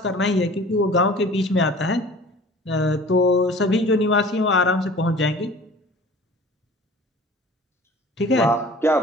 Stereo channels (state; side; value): normal; both; correlation 0.45